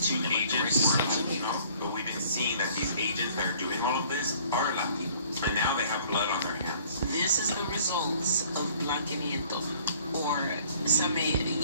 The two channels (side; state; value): both; inverted; correlation -0.56